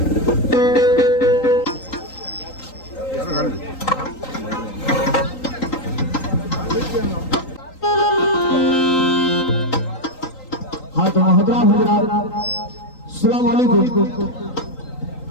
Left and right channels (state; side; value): late; right; 3.8 ms